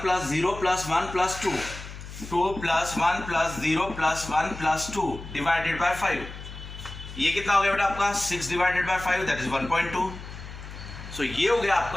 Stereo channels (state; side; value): noise; left; hum, 12 dB below the sound